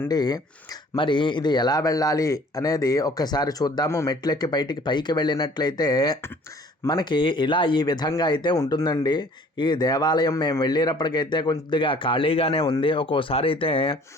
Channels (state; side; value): normal; both; correlation 0.53